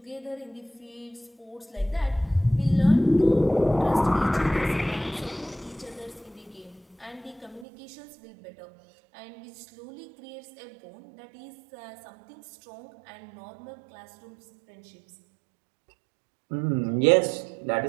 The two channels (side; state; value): left; drops out; at 7.7 s